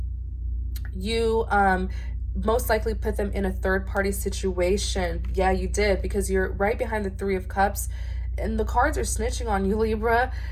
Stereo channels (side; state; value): both; identical; correlation 1.00